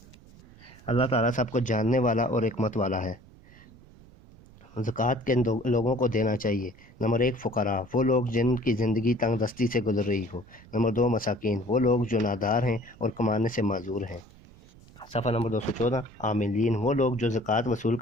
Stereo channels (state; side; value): noise; right; rumble, 23 dB below the sound